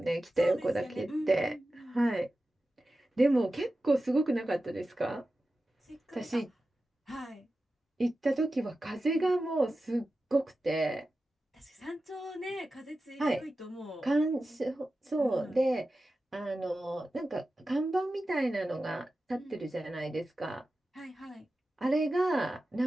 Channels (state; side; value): normal; both; correlation 0.93